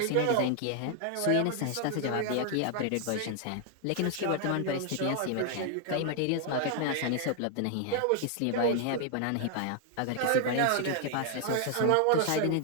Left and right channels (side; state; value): both; different; correlation 0.00